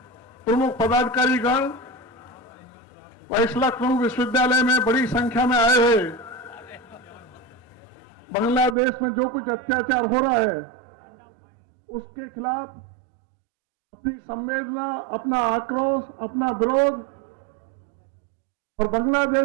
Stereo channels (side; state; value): left; drops out; at 8.8 s